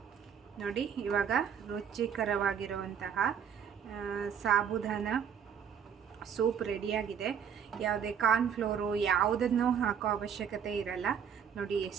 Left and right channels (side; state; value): left; quieter; 7.7 dB